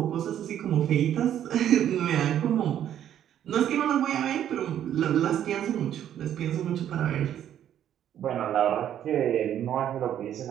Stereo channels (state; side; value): quieter; left; 10.5 dB